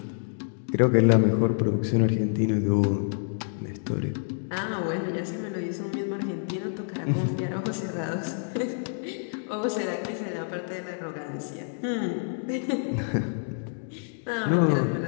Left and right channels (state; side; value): silent; right; digital silence